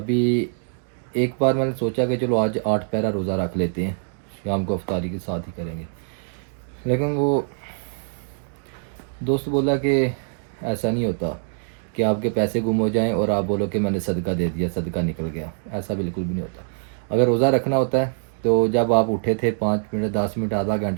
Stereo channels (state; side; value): silent; left; digital silence